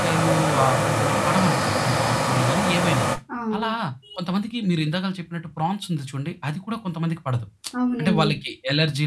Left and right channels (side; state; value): both; identical; correlation 1.00